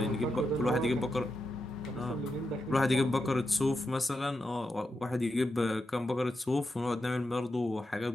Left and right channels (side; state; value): both; normal; correlation 0.87